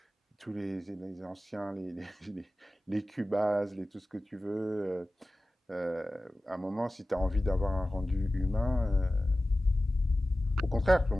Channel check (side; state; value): both; normal; correlation 0.95